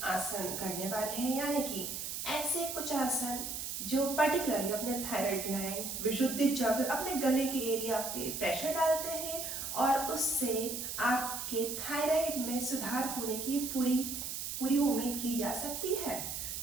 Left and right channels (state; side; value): noise; right; hiss, 5 dB below the sound